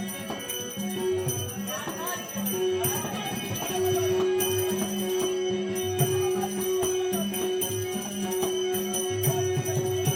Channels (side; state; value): both; identical; correlation 1.00